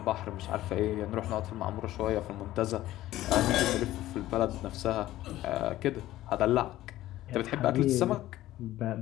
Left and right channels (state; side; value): quieter; right; 15.1 dB